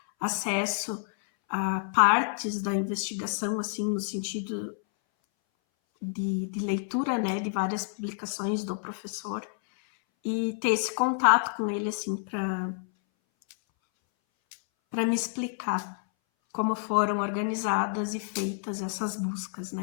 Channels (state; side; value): silent; right; 59 dB below the other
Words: acesso a partes da investigação, assim, no sentido de leitura, né, de várias publicações do professor, e ter esse contato com ele, assim, para me explicar como foram organizadas e feitas essas buscas,